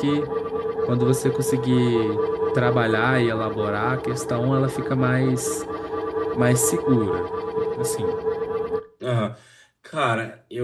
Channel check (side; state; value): both; identical; correlation 1.00